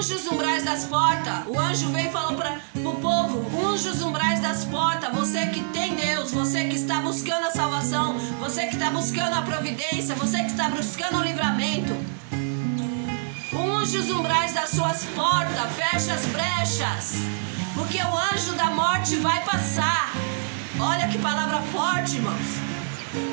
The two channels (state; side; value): silent; left; digital silence